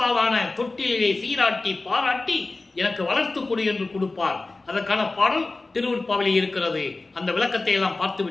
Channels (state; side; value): quieter; right; 3.3 dB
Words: தொட்டிலே சீராட்டி பாராட்டி எனக்கு வளர்த்து கொடு என்று கொடுப்பார். அதற்கான பாடல் திருவுற்பாவிலே இருக்கிறது. அந்த விளக்கத்தை எல்லாம் பார்த்து